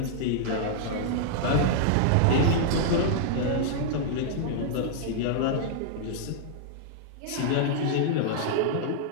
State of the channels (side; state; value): both; different; correlation -0.01